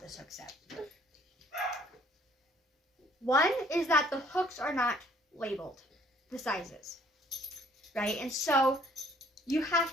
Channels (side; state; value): both; normal; correlation 0.60